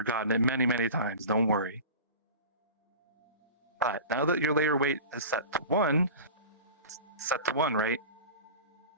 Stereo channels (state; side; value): inverted; both; correlation -0.35